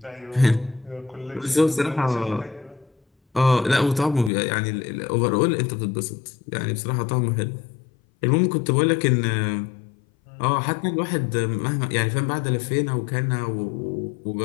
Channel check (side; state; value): right; drops out; at 4.3 s